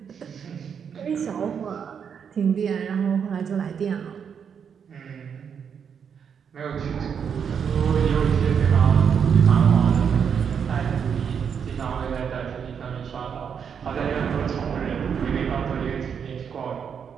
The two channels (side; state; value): left; quieter; 7.2 dB